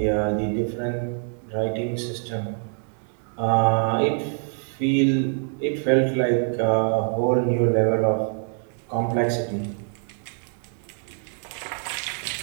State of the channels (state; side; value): silent; left; 55 dB below the other